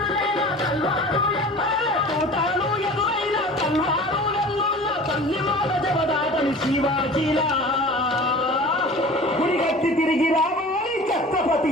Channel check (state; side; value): normal; both; correlation 0.41